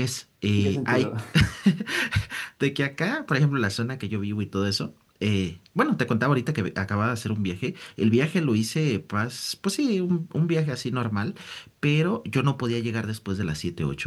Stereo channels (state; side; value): identical; both; correlation 1.00